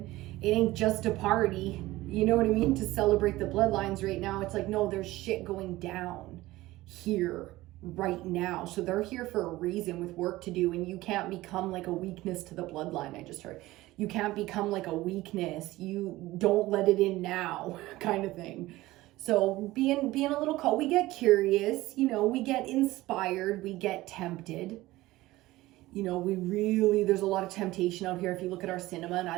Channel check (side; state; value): left; quieter; 17.8 dB